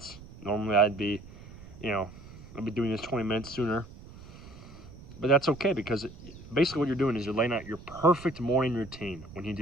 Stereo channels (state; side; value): noise; right; rumble, 17 dB below the sound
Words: Normally I'd be doing this 20 minutes sooner. But that's okay because basically what you're doing is you're laying out your perfect morning routine when you